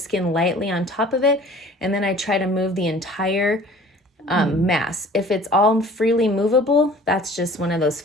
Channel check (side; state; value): both; normal; correlation 0.48